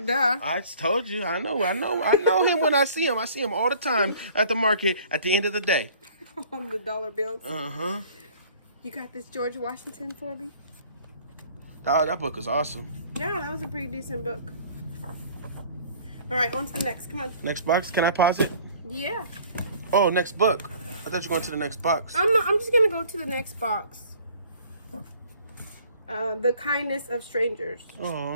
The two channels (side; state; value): both; inverted; correlation -0.53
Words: duh. I told you. I know him when I see him. I see him all the time at the market at the end of the day. On the dollar bills. Uh-huh. You got this George Washington for me? Oh, that book is awesome. Yeah, that was a pretty decent book. All right, on to the next. Come on. Next box. Can I pause it? Yeah. Oh, next book. I thought you were going to the next box. I'm just gonna go to the next box. The Kindness of Strangers.